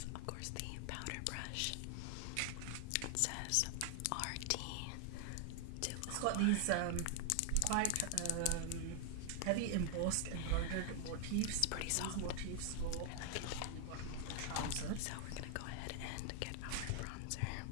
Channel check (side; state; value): both; different; correlation 0.00